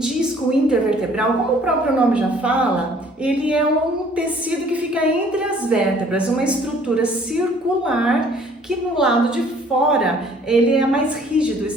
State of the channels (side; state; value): both; normal; correlation 0.57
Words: intervertebral, como o próprio nome já fala, ele é um tecido que fica entre as vértebras, uma estrutura circular que no lado de fora ele é mais rígido,